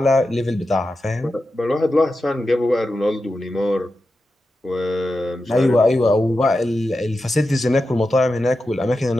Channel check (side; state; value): both; normal; correlation 0.90